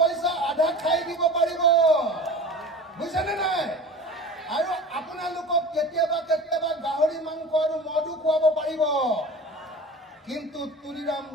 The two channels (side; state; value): both; normal; correlation 0.36